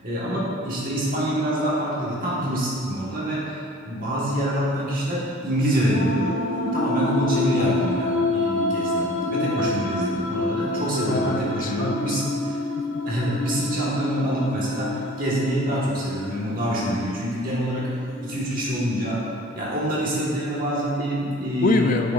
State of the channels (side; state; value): both; normal; correlation 0.47